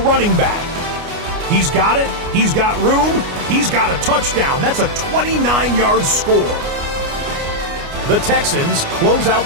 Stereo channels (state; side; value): late; left; 29 ms